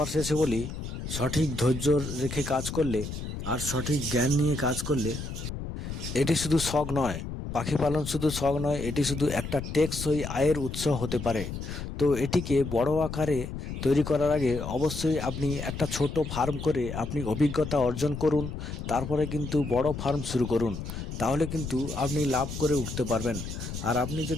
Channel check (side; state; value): left; noise; rumble, 7 dB below the sound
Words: শেষে বলি, সঠিক ধৈর্য রেখে কাজ করলে আর সঠিক জ্ঞান নিয়ে কাজ করলে এটি শুধু শখ নয়, পাখি পালন শুধু শখ নয়, এটি শুধু একটা টেকসই আয়ের উৎস হতে পারে। তো এটিকে বড় আকারে তৈরি করার আগে অবশ্যই আপনি একটা ছোট ফার্ম করে আপনি অভিজ্ঞতা অর্জন করুন। তারপরে কিন্তু বড় ফার্ম শুরু করুন। তাহলে কিন্তু আপনি লাভ করে উঠতে পারবেন। আর আপনি